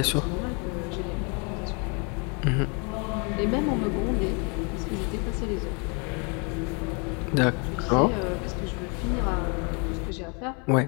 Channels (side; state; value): right; quieter; 34.5 dB